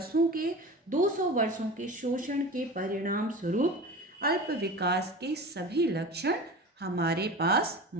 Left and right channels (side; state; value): both; normal; correlation 0.34